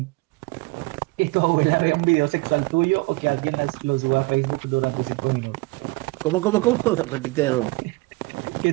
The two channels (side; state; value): left; quieter; 23.9 dB